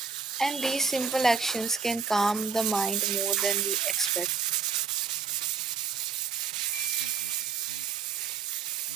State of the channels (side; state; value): left; quieter; 5.7 dB